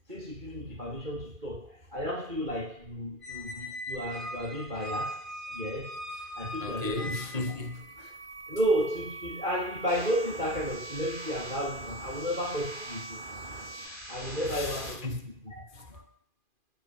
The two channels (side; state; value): left; late; 2.4 ms